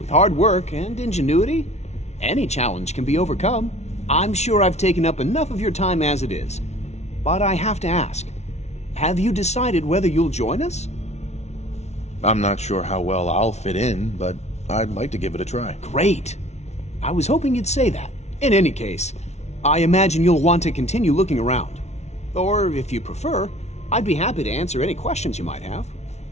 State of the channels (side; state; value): right; late; 0.32 ms